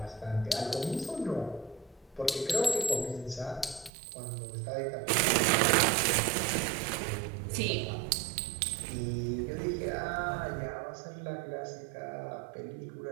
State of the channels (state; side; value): drops out; left; at 3.9 s